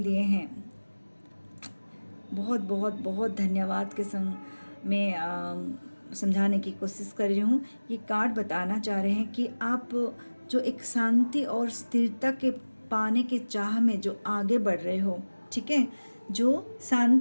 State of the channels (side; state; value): both; inverted; correlation -1.00